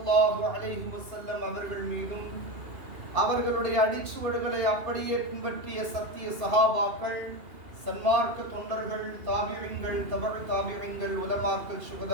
அலைஹி வஸல்லம் அவர்கள் மீதும் அவர்களுடைய அடிச்சுவடுகளை அப்படியே பின்பற்றிய சத்திய சஹாபாக்கள், சன்மார்க்க தொண்டர்கள், தாபியங்கள், தபழ் தாபியங்கள், உலமாக்கள்,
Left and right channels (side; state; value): left; late; 2.8 ms